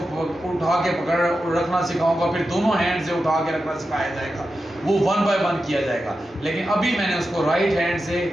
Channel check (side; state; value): both; normal; correlation 0.90